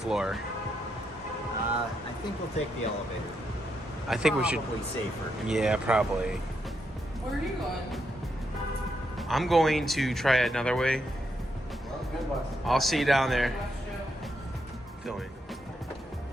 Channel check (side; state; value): both; normal; correlation 0.80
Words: I think we'll take the elevator. I think we should. Probably safer. Yeah, probably. Where are you going? I'm going to try it another way. I'll see you down there. Filming.